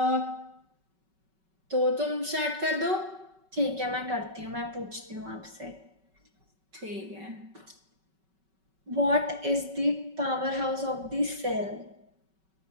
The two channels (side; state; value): left; late; 5.3 ms